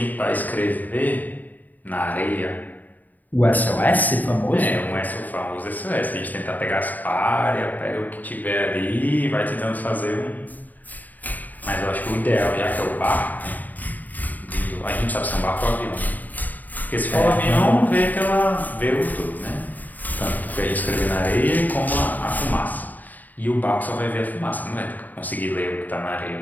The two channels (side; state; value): right; late; 0.083 ms